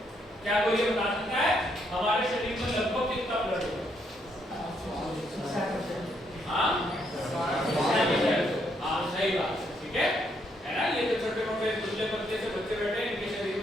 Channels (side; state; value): both; normal; correlation 0.74